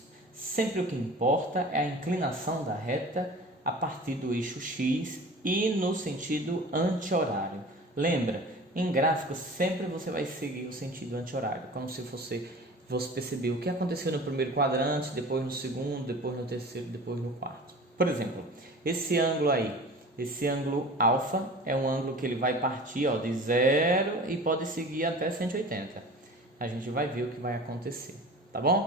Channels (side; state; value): both; normal; correlation 0.39